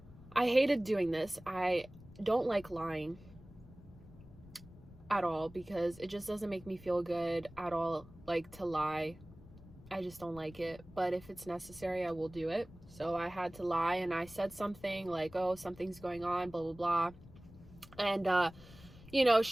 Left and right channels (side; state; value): left; noise; rumble, 20 dB below the sound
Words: hated doing this. I don't like lying at all because it just doesn't make me feel good at all, like, to lie. I just don't like it. But if it's necessary, I will do it. So I had to lie, and I said something like, oh, something's going on, blah, blah, blah. And, you know,